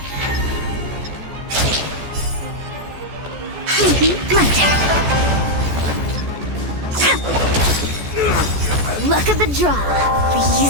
My turn. Luck of the draw,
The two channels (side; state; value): left; late; 14 ms